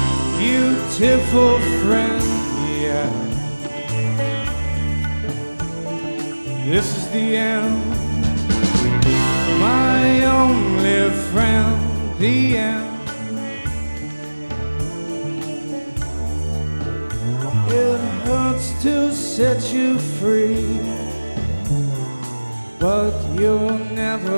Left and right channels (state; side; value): inverted; both; correlation -1.00